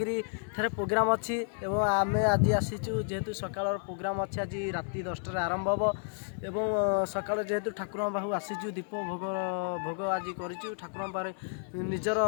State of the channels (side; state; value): right; silent; 57 dB below the other